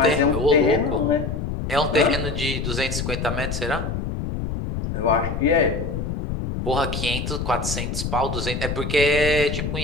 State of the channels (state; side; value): noise; left; rumble, 4 dB below the sound